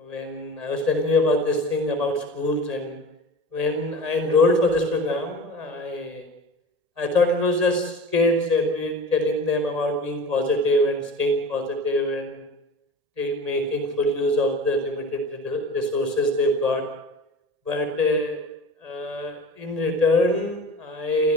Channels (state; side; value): late; left; 1.8 ms